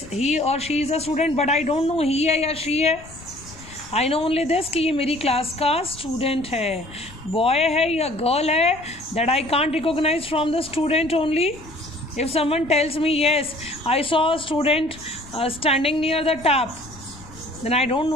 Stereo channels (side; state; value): left; noise; rumble, 19 dB below the sound